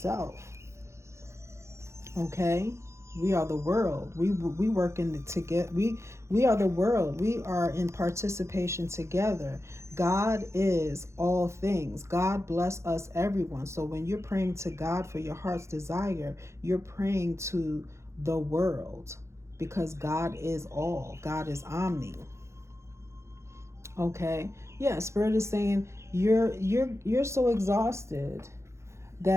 Okay, we are the world. We work in together. We are the world. We are in participation together. God is all things. God bless us, everyone. So when you're praying to God for your heart's desire, you're praying to the world, because God is all. God is omni. Okay. Yeah, Spirit is saying you're so exhausted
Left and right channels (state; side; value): late; left; 0.13 ms